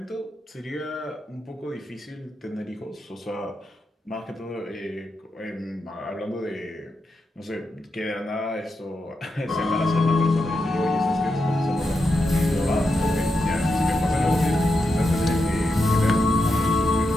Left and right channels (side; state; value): both; normal; correlation 0.86